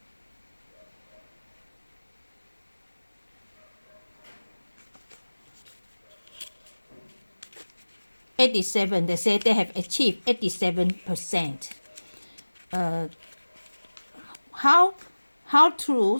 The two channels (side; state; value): both; inverted; correlation -1.00